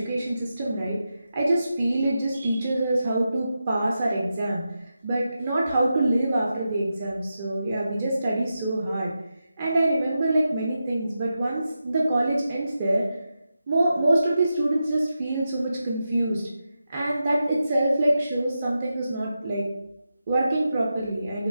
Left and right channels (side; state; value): both; inverted; correlation -0.89